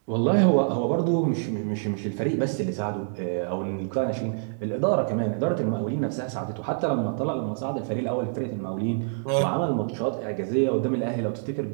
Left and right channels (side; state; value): left; silent; digital silence